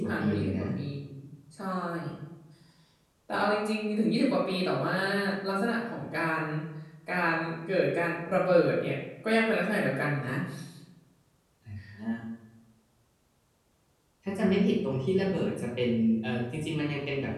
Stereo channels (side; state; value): both; identical; correlation 1.00